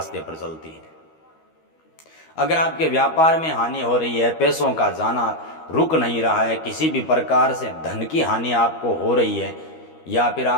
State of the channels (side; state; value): right; late; 13 ms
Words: पर चलती है। अगर आपके व्यापार में हानि हो रही है, पैसों का जाना रुक नहीं रहा है, किसी भी प्रकार से धन की हानि आपको हो रही है या फिर